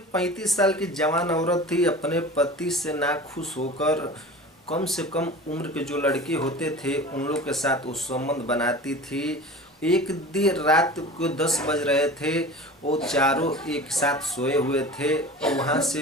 35 साल की जवान औरत थी। अपने पति से नाखुश होकर कम से कम उम्र के जो लड़के होते थे उन लोग के साथ वो संबंध बनाती थी। एक देर रात को 10 बज रहे थे। वो चारों एक साथ सोए हुए थे और वहाँ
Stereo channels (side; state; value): both; normal; correlation 0.36